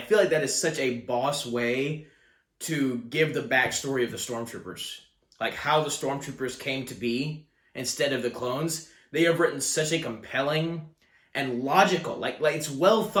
like that is such a boss way to give the backstory of the Stormtroopers. Like how the Stormtroopers came to be instead of the clones. They have written such a compelling and logical, like it's well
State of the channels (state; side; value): identical; both; correlation 1.00